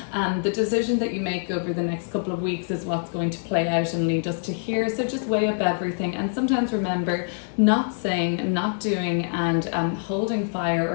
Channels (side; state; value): right; silent; digital silence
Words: The decision that you make over the next couple of weeks is what's going to play out and lead us to here. So just weigh up everything, and sometimes remember, not saying, not doing, and holding fire or